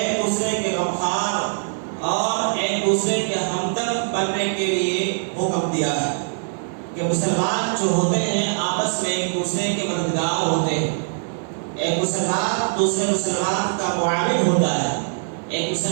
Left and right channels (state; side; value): silent; left; 64 dB below the other